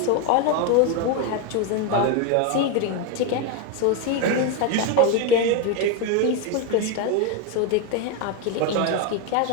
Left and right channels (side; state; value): both; different; correlation 0.02